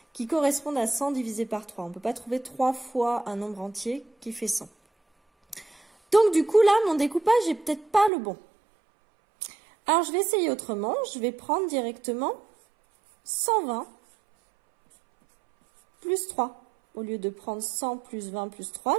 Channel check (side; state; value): left; drops out; at 8.1 s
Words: qui corresponde à 100 divisé par 3. On ne peut pas trouver 3 fois un nombre entier qui fait 100. Donc du coup là, mon découpage n'est peut-être pas le bon. Alors je vais essayer autrement. Je vais prendre directement 120 plus 3. Au lieu de prendre 100 plus 20 plus 3,